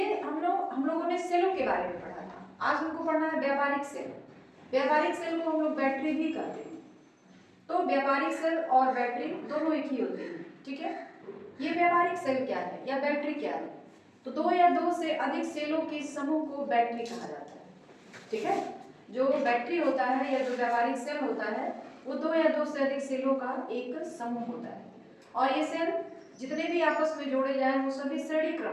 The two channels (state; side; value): identical; both; correlation 1.00